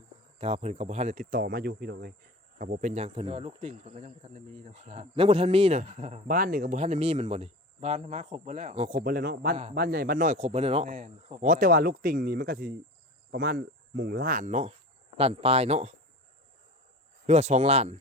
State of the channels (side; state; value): both; normal; correlation 0.34